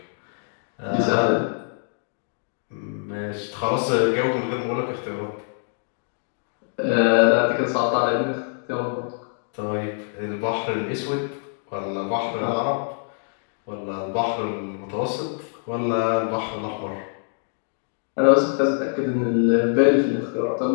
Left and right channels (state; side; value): silent; right; digital silence